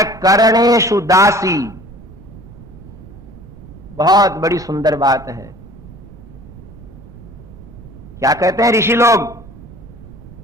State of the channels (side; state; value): right; noise; rumble, 18 dB below the sound